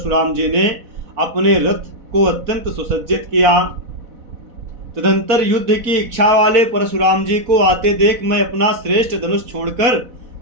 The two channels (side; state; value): left; late; 4.1 ms